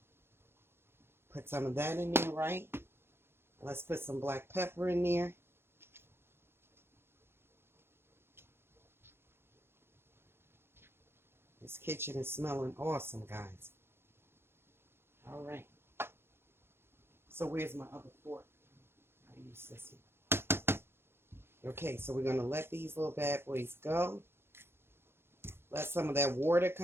Put some of that in there, right? Let's put some black pepper in there. This kitchen is smelling awesome, guys. All right. So where's my other fork? I use this one. Okay, so we're going to let these little bad boys go. Let some of that water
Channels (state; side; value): late; left; 0.11 ms